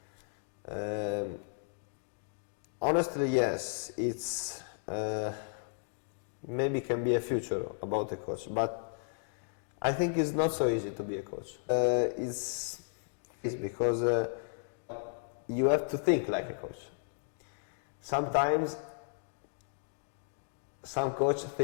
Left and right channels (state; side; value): silent; right; digital silence